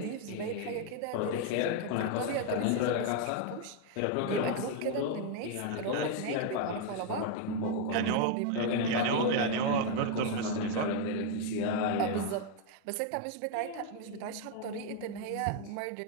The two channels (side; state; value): both; different; correlation 0.00